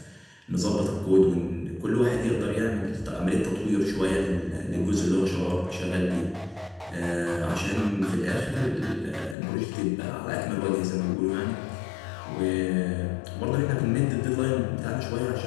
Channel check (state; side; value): drops out; right; at 9.3 s